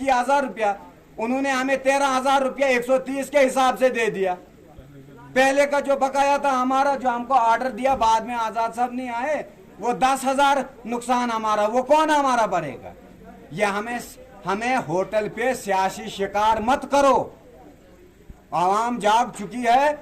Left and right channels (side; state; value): both; identical; correlation 1.00